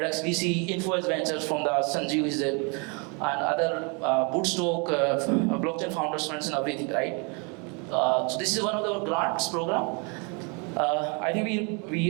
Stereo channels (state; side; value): quieter; left; 33.6 dB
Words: VC, Influence Ventures from the Sanjeev is there, and other Bootstock, blockchain founders funds and everything, right? So this is one of the grants program. I think